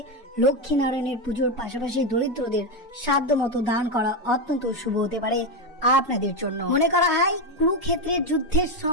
লক্ষ্মী নারায়ণের পুজোর পাশাপাশি দরিদ্রদের সাধ্য মতো দান করা অত্যন্ত শুভ হতে পারে আপনাদের জন্য। মনে করা হয় কুরুক্ষেত্রের যুদ্ধের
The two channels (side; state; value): both; normal; correlation 0.09